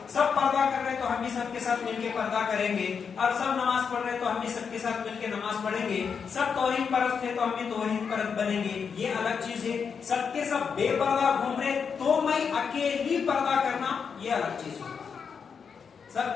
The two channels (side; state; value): right; quieter; 6.3 dB